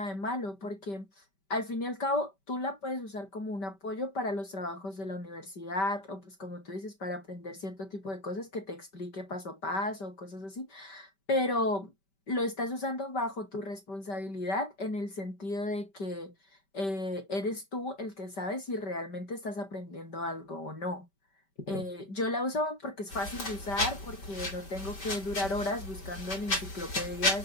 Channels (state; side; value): late; right; 5.1 ms